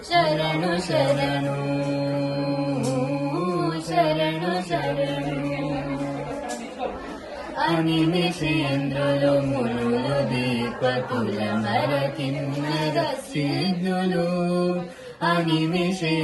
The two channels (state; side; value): identical; both; correlation 1.00